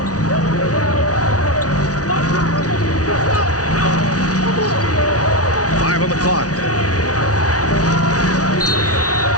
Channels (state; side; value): late; right; 0.68 ms